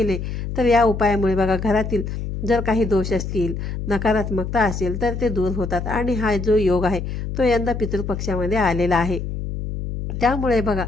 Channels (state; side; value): noise; left; hum, 5 dB below the sound